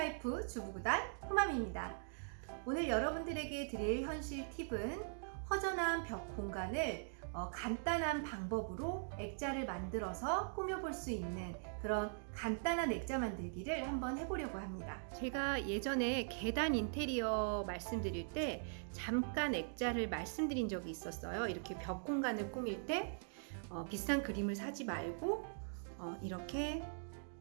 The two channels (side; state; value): left; silent; digital silence